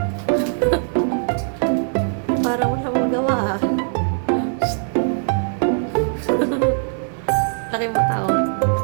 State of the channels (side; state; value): left; silent; digital silence